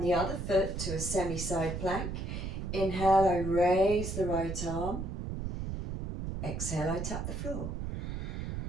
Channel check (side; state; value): right; noise; rumble, 4 dB below the sound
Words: the other foot to a semi-side plank. Inhale, I raise the right arm. Exhale, I tap the floor.